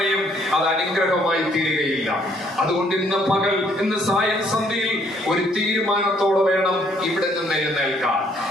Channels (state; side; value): normal; both; correlation 0.66